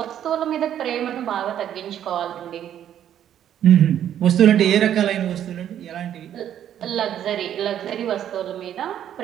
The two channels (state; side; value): quieter; left; 10.4 dB